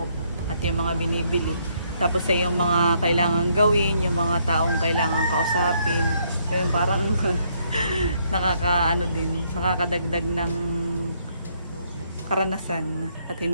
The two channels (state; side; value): inverted; both; correlation -0.71